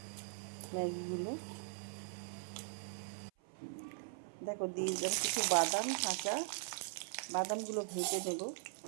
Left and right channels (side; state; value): left; silent; 51 dB below the other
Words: ম্যাগিগুলো। দেখো দিয়ে দিলাম কিছু বাদাম, কাঁচা বাদামগুলো ভেজে নেব,